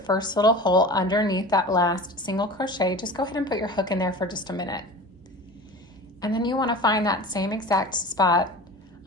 first little hole underneath that last single crochet, just go ahead and put your hook in there for just a minute. And then you want to find that same exact spot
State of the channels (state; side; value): normal; both; correlation 0.36